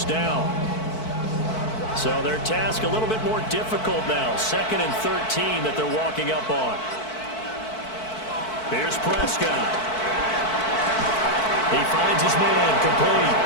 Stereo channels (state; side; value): late; right; 4.5 ms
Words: down. So their task a little bit more difficult now. 2nd and 13 that they're walking up on. Here's Prescott. He finds his man complete.